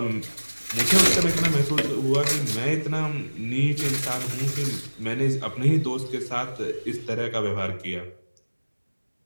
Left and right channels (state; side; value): inverted; both; correlation -1.00